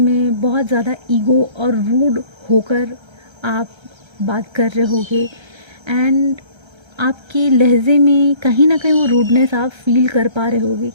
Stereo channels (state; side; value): late; left; 1.3 ms